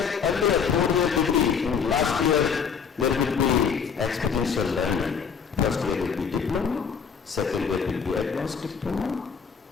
earlier, 4-year degree. In last year, there will be experiential learning. First year will be diploma, second year will be advanced diploma,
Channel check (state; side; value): quieter; right; 6.5 dB